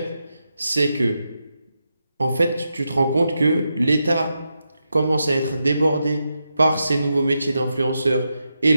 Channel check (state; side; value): inverted; both; correlation -0.87